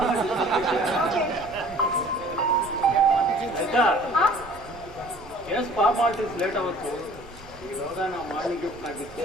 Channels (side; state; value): both; normal; correlation 0.50